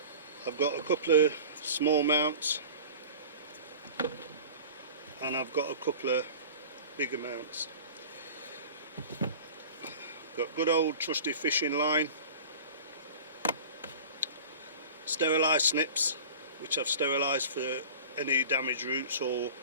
I've got a couple of small mounts and I've got a couple of bigger mounts. Got good old trusty fishing line, sterilised snips which I've sterilised for any damaged roots or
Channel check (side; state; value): both; inverted; correlation -0.39